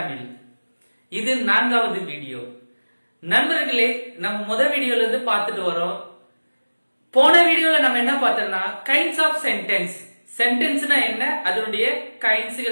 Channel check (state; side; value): inverted; both; correlation -1.00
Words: இது 4வது வீடியோ. நண்பர்களே, நம்ம முதல் வீடியோல இருந்து பார்த்துட்டு வரோம். போன வீடியோல நம்ம என்ன பார்த்தோம்னா கைண்ட்ஸ் ஆஃப் சென்டென்ஸ், சென்டென்ஸ்னா என்ன, அதனுடைய